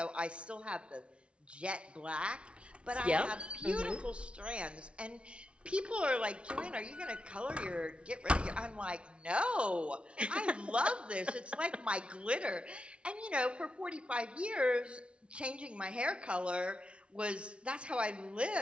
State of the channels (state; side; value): late; left; 0.059 ms